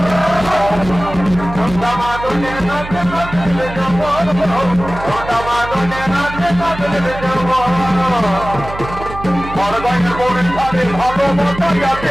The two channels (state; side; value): noise; right; hum, 11 dB below the sound